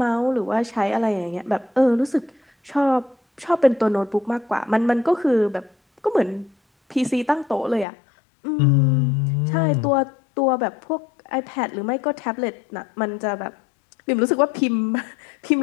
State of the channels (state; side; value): drops out; right; at 7.9 s